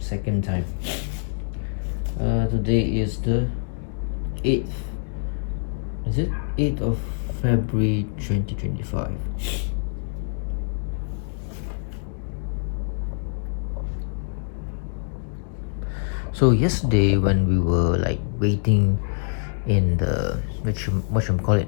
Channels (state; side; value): silent; right; digital silence